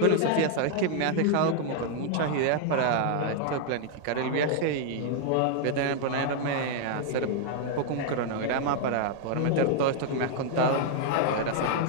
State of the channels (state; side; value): different; both; correlation -0.01